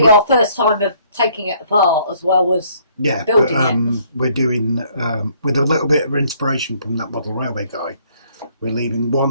our first time of taking it apart as well as building it. We're doing, with a little bit of inspiration from that model railway guy, we're leaving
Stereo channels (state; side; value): inverted; both; correlation -0.64